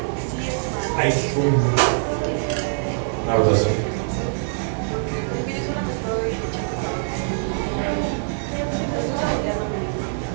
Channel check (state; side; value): silent; left; digital silence